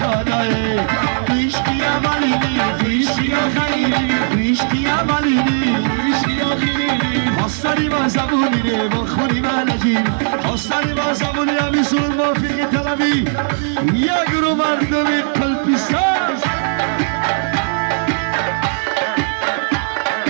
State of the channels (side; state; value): left; silent; digital silence